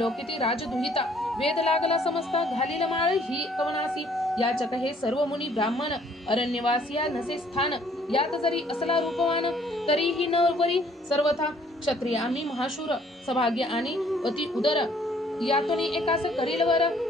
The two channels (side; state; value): both; normal; correlation 0.62